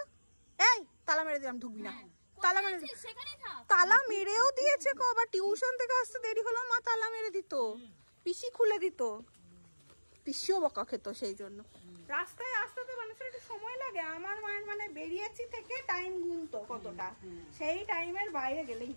এই তালা মেরে দিলাম, ঢুকবি না। তালা মেরে, তালা মেরেও দিয়েছে গো। আবার টিউশন থেকে আসতে দেরি হলো, মা তালা মেরে দিত, পিসি খুলে দিত, পিসিও বকা খেত। সেই জন্য রাস্তায় আসতে তো মানুষের একটু সময় লাগে। আমার মায়ের মানে বেরিয়েছি থেকে টাইম গুনতো কতটা, সেই টাইমের বাইরে গেলেই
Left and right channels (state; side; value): inverted; both; correlation -1.00